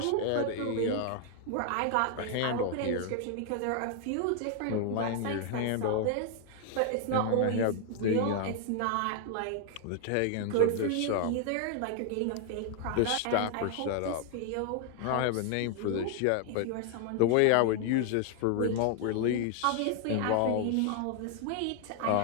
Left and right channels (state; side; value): different; both; correlation 0.00